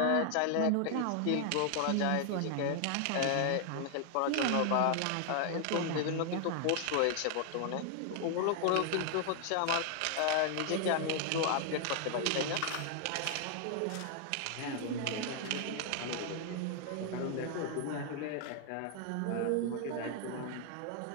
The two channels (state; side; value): different; both; correlation 0.00